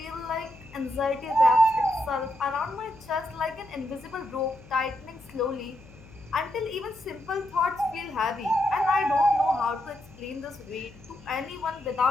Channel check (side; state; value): left; noise; hum, 21 dB below the sound